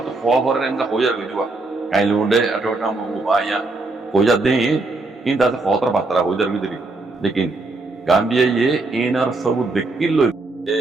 তো ফল করে এন্ড হইয়া গইবা কাইলে উন্ডে আটোটা মো বায়া হইয়া দেই ইন দাতে ফতর বাতরা হইয়া গইদি লেকিন গাম্বিয়া ইয়ে ইনার সব দেখিল এ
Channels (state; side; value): quieter; left; 3.3 dB